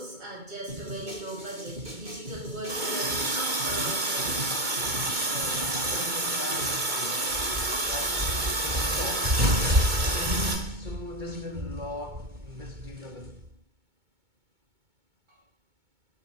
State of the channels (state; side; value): late; left; 2.2 ms